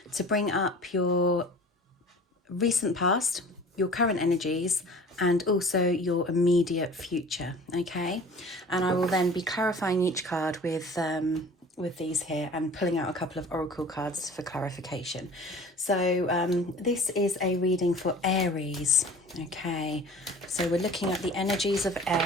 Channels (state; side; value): normal; both; correlation 0.44